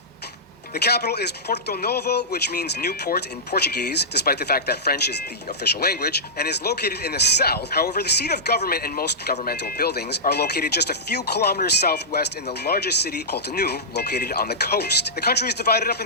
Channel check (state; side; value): normal; both; correlation -0.13